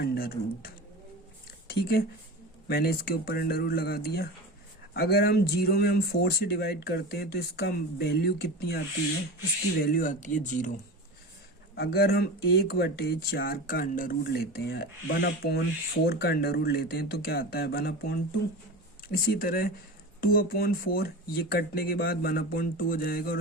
रूट। ठीक है, मैंने इसके ऊपर अंडर रूट लगा दिया। अगर हम 0 में हम 4 से डिवाइड करते हैं तो इसका वैल्यू कितनी आती है? इसकी वैल्यू आती है 0। अगर हम 1/4 का अंडर रूट लेते हैं, 1/4 का अंडर रूट लेते हैं तो क्या आता है? 1/2। इसी तरह 2/4 ये कटने के बाद 1/2 हो जाएगा और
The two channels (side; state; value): both; normal; correlation 0.29